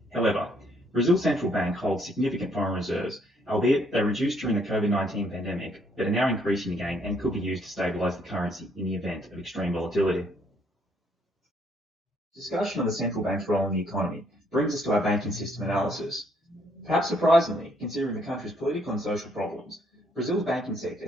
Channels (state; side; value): normal; both; correlation 0.68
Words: However, Brazil's central bank holds significant foreign reserves, albeit they reduced during the COVID-19 pandemic, but are now increasing again and could be used to stabilise the currency in the event of extreme volatility. Discussion of the central bank's role in the economy brings us to our banking system analysis. Perhaps surprisingly, considering the country's political and social problems, Brazil's banking sector